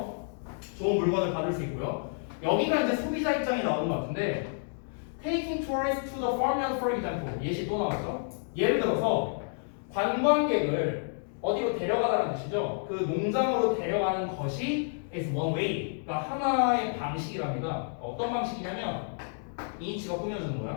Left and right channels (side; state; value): right; silent; digital silence